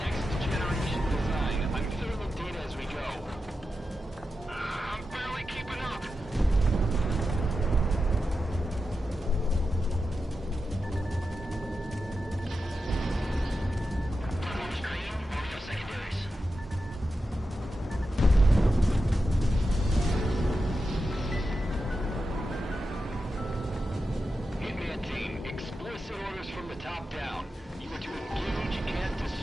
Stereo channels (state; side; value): normal; both; correlation 0.90